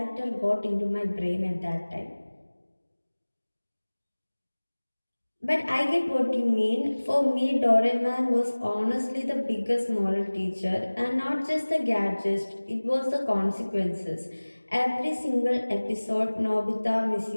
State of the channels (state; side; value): inverted; both; correlation -1.00